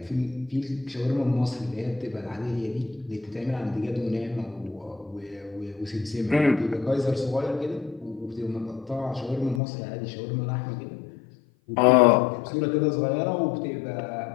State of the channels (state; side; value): drops out; right; at 9.6 s